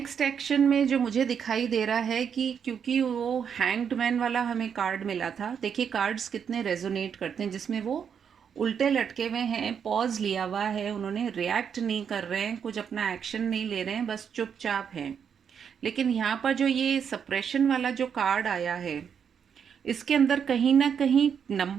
एक्शन में जो मुझे दिखाई दे रहा है कि क्योंकि वो हैंग्ड मैन वाला हमें कार्ड मिला था, देखिए कार्ड्स कितने रेजोनेट करते हैं, जिसमें वो उल्टे लटके हुए हैं, पॉज लिया हुआ है उन्होंने, रिएक्ट नहीं कर रहे हैं, कुछ अपना एक्शन नहीं ले रहे हैं, बस चुपचाप हैं। लेकिन यहाँ पर जो ये सप्रेशन वाला जो कार्ड आया है, इसके अंदर कहीं ना कहीं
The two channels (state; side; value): quieter; left; 7.4 dB